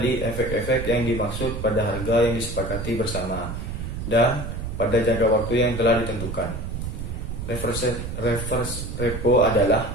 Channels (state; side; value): noise; right; rumble, 6 dB below the sound